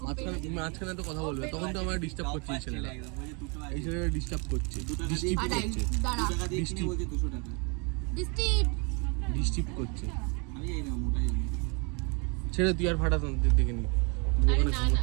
মাঝখানে তো কথা বলবে, তখন তো আমার ডিস্টার্ব করছে এই ছেলেটা। এই ছেলেটা ডিস্টার্ব করছে, ডিস্টার্ব করছে, দাঁড়া ডিস্টার্ব ডিস্টিপ ডিস্টার্ব করছে। ছেড়ে তুই আর ফাটাস না, দেখে নি ওখানে না,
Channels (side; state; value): left; quieter; 33.1 dB